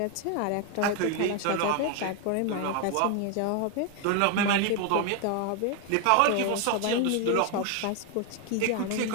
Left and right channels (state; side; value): different; both; correlation 0.01